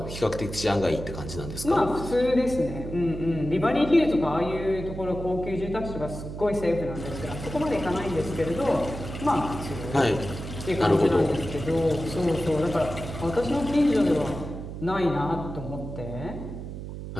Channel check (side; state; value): right; noise; hum, 9 dB below the sound